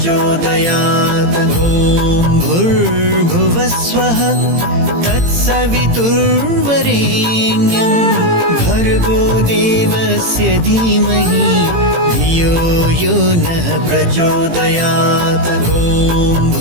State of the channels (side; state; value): left; late; 18 ms